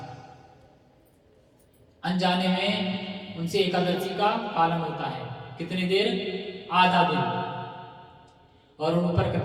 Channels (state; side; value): identical; both; correlation 1.00